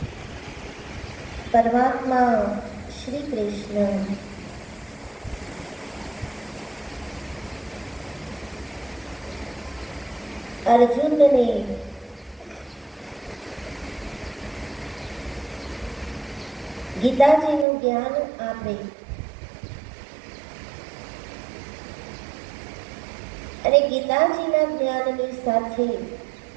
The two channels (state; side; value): drops out; left; at 17.7 s